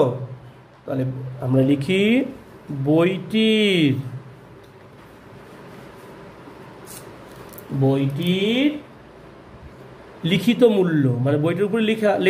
তাহলে আমরা লিখি বইটির লিখিত মূল্য, মানে বইটির উপরে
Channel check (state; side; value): identical; both; correlation 1.00